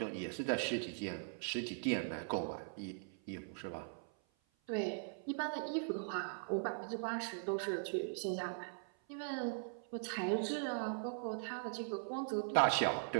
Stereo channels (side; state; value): left; silent; 51 dB below the other